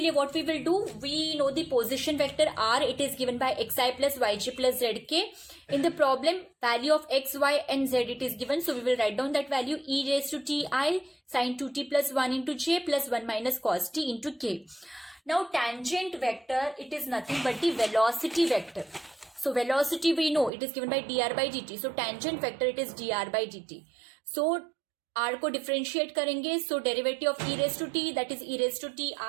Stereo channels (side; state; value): left; drops out; at 20.5 s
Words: लिए what we will do? We know the position vector r. It is given by xi plus yj plus zk. In the problem, value of x, y and z it is given. So we will write down that value e raised to ti sine 2t plus 1 into j plus 1 minus cos t into k. Now tangent vector, it is nothing but the velocity vector. So velocity we know it is given by dr by dt. So tangent vector it is dr by dt. So r को differentiate करेंगे. So derivative of e raised to t, that is e raised to t